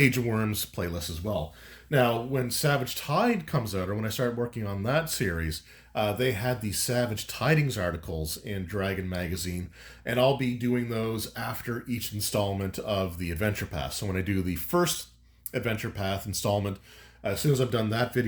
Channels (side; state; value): both; identical; correlation 1.00